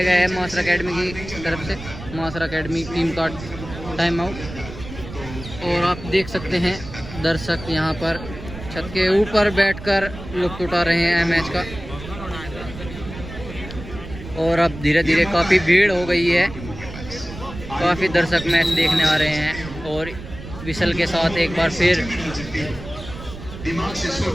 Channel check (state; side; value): noise; right; rumble, 12 dB below the sound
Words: गया है मासरा अकेडमी की तरफ से। मासरा अकेडमी टीम का टाइम आउट। और आप देख सकते हैं दर्शक यहाँ पर छत के ऊपर बैठकर लुत्फ उठा रहे हैं मैच का। और अब धीरे धीरे काफ़ी भीड़ हो गई है, काफ़ी दर्शक मैच देखने आ रहे हैं। और विसल के साथ एक बार फिर